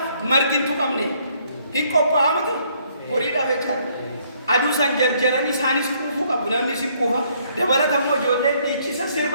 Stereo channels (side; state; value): both; inverted; correlation -0.67